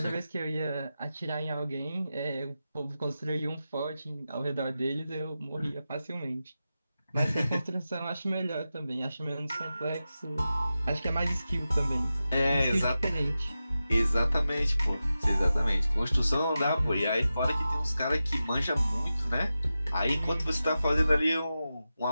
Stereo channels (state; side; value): inverted; both; correlation -0.92